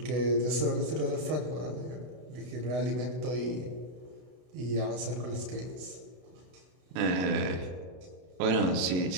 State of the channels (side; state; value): left; late; 32 ms